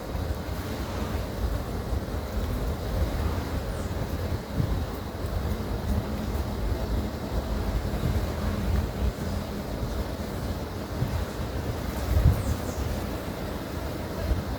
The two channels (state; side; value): identical; both; correlation 1.00